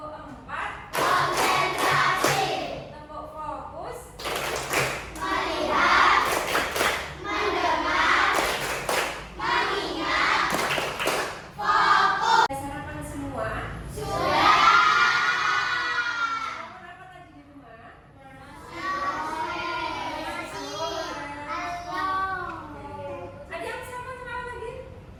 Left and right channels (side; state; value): both; identical; correlation 1.00